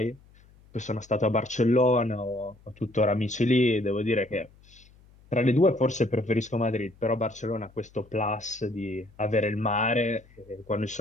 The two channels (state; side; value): noise; left; hum, 27 dB below the sound